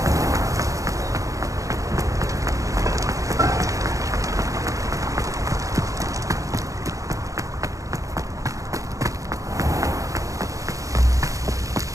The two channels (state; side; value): late; left; 0.16 ms